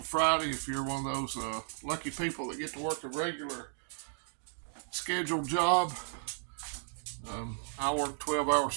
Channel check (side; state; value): left; silent; digital silence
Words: If you're one of those lucky people that get to work a regular scheduled job, I work 12-hour